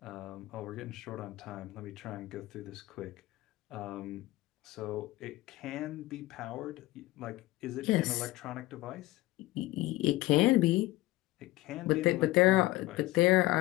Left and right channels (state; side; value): quieter; right; 18.4 dB